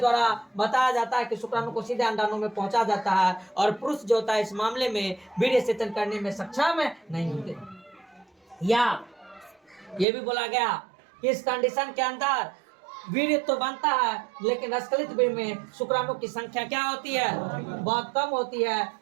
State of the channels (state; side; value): drops out; left; at 10.1 s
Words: बताया जाता है कि शुक्राणु को सीधे अंडाणु में पहुंचा जाता है, और पुरुष जो होता है इस मामले में वीर्य सेचन करने में सक्षम नहीं होते। या ये भी बोला गया कि इस कंडीशन के अंदर वीर्य तो बनता है लेकिन स्खलित वीर्य में शुक्राणु की संख्या क्या होती है, बहुत कम होती है,